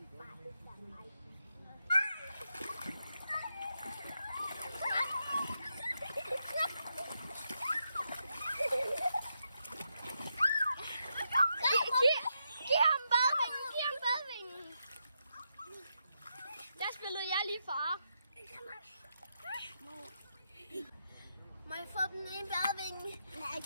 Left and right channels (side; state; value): both; inverted; correlation -0.83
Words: Giv ham badevingen. Der spillede jeg lige far. Må jeg få den ene badevinge? Nej,